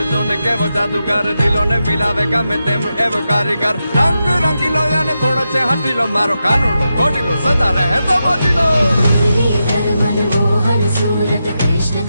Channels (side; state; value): both; inverted; correlation -0.88